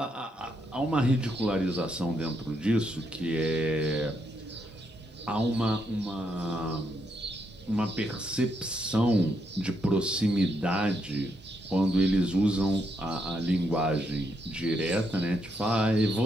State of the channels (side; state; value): both; normal; correlation 0.78